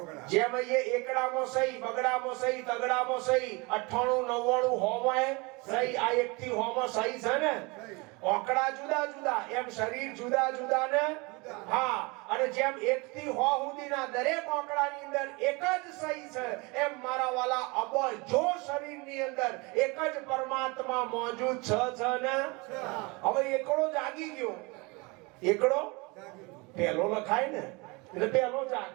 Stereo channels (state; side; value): quieter; left; 26.9 dB